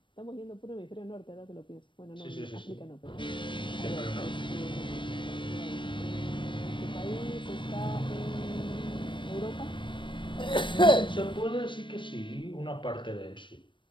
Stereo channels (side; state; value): right; late; 0.24 ms